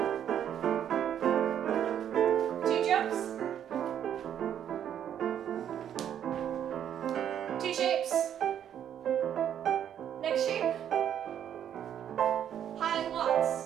2 jumps. 2 shapes. Next shape. High walks.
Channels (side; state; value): left; quieter; 9.7 dB